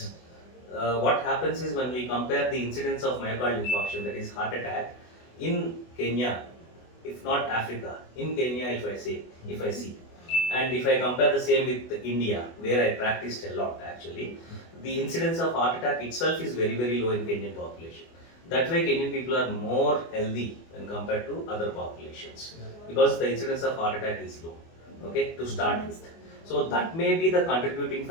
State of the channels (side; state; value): right; late; 24 ms